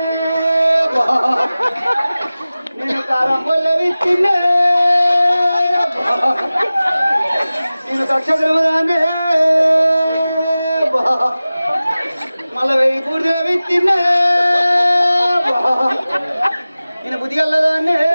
నేను కారం పొల్ల విత్తిన్నా, నేను దక్షిణదానే మళ్ళా 1000 పూర్తిగా విత్తిన్నా, నేను బుద్ధిగల్లదాన్నే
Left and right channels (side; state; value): both; inverted; correlation -0.97